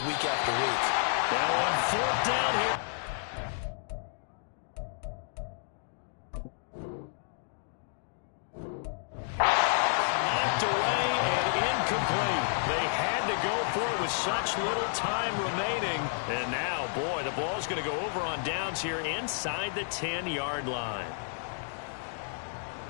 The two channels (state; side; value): silent; right; digital silence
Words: week after week. Now on 4th down here. Such little time remaining. And now, boy, the ball's going to go over on downs here inside the 10-yard line.